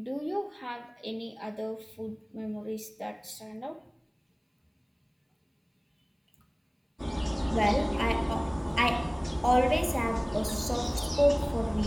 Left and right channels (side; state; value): both; identical; correlation 1.00